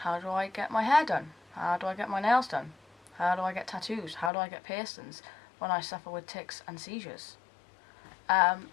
do I get my hair done? How do I get my nails done? How do I get tattoos? How do I get piercings when I suffer with tics and seizures? And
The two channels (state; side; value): drops out; right; at 4.3 s